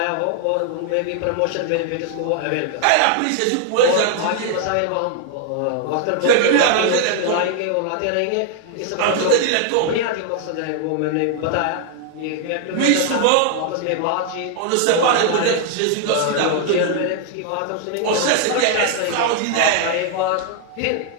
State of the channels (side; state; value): both; different; correlation 0.00